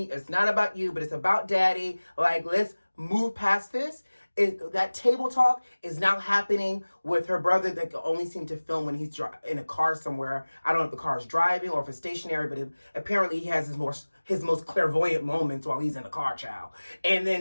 It's not about you, but it's about Daddy. Like, let's move past this. That table talk is now happening with her brother that can only seem to film when he's in a car somewhere. I don't know if the car is driving or if it's stationary, but apparently he has his most clairvoyant moments while he's in the car, child. And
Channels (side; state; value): both; inverted; correlation -1.00